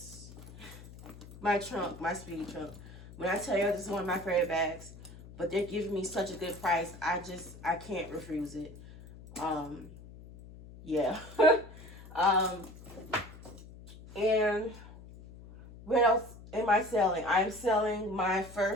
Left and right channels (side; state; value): left; noise; hum, 17 dB below the sound